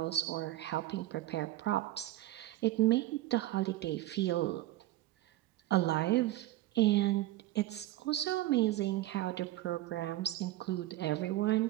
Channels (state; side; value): quieter; left; 15.5 dB